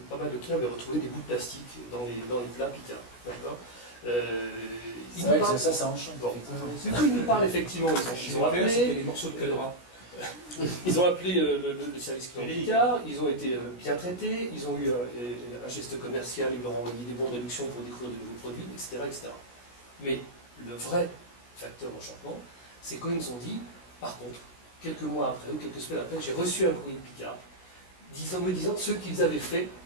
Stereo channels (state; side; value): late; right; 16 ms